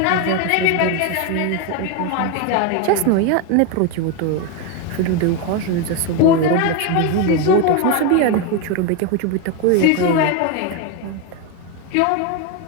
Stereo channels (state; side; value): different; both; correlation 0.02